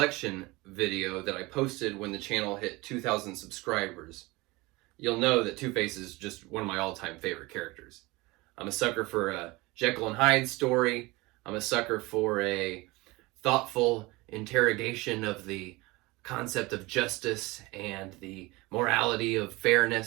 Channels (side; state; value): left; quieter; 22.5 dB